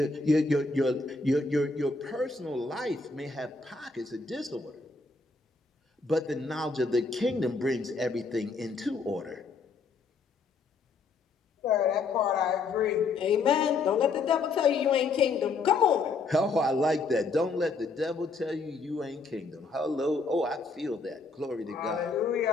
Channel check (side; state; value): right; quieter; 4.0 dB